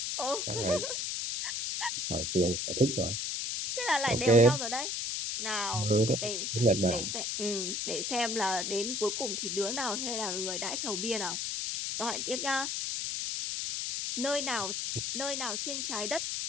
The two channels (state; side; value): noise; left; hiss, 1 dB below the sound